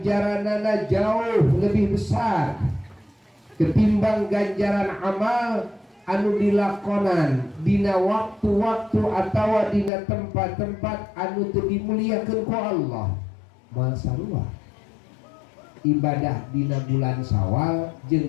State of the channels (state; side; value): drops out; right; at 9.9 s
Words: jauh lebih besar ketimbang ganjaran amal anu dilakonan dina waktu-waktu atawa dina tempat-tempat anu teu dimuliakeun ku Allah. Moal sarua ibadah dina bulan Syawal